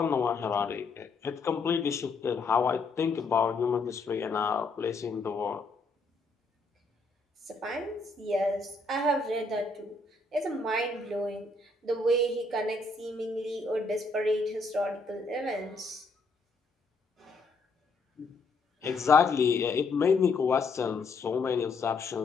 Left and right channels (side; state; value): right; quieter; 3.6 dB